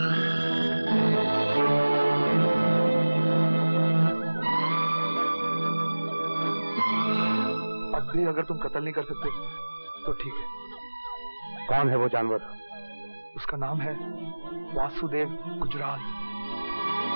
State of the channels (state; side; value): inverted; both; correlation -1.00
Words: अब भी अगर तुम कत्ल नहीं कर सकते तो ठीक है। कौन है वो जानवर? उसका नाम है वासुदेव गुजराल।